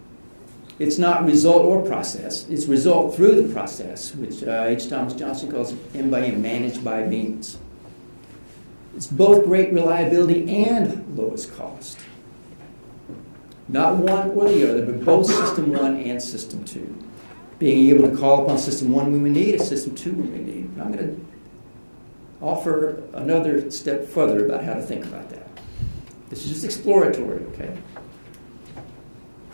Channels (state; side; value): inverted; both; correlation -1.00